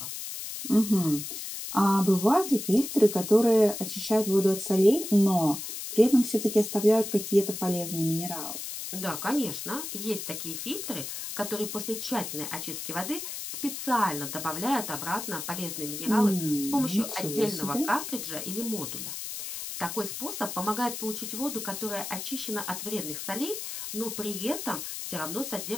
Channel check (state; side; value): noise; left; hiss, 7 dB below the sound